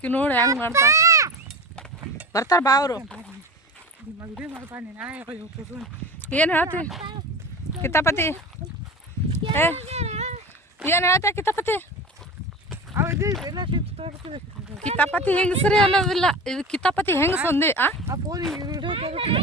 ನೋಡಿ ಹೆಂಗೆ ಮಾಡ್ತಾ ಬರ್ತಾರ ಬಾ ಅವರು ಏನು ಹೇಳ್ತಿ ಕಿತಾಪತಿ ಏನು ಹೇಳ್ತ ಕಿತಾಪತಿ ಕಿತಾಪತಿ ಹೆಂಗಸ್ರಿ ಅನ್ನೋದಿಲ್ಲ, ಇದು ಕಿತಾಪತಿ ಹೆಂಗಸ ಒಂದೇ.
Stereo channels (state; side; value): normal; both; correlation 0.29